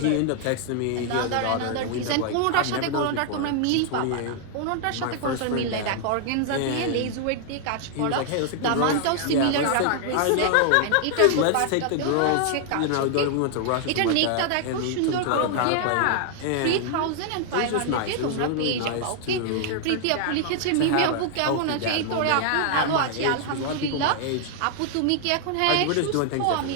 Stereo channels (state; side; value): different; both; correlation 0.00